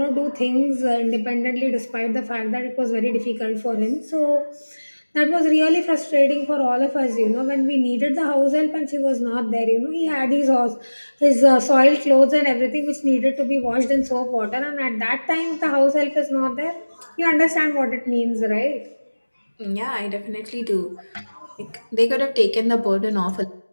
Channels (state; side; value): inverted; both; correlation -1.00